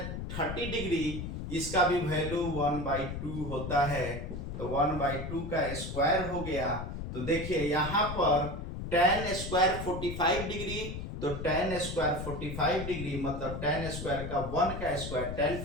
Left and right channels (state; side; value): noise; left; rumble, 6 dB below the sound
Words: 30 degree, इसका भी वैल्यू 1/2 होता है, तो 1/2 का स्क्वायर हो गया। तो देखिए यहाँ पर tan स्क्वायर 45 डिग्री, तो tan स्क्वायर 45 डिग्री मतलब tan स्क्वायर का 1 का स्क्वायर, tan